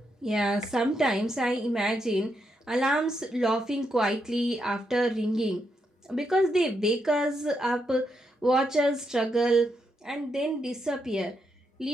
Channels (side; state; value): both; normal; correlation 0.81